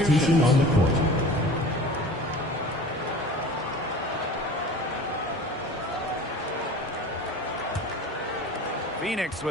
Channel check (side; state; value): both; normal; correlation 0.40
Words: substitutions. on the court. Phoenix